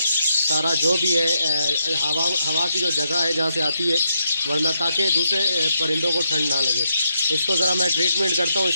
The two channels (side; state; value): both; inverted; correlation -0.80